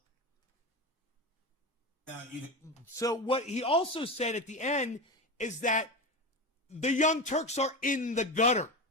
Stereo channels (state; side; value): normal; both; correlation 0.22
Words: Now, So what he also said at the end is that the Young Turks are in the gutter.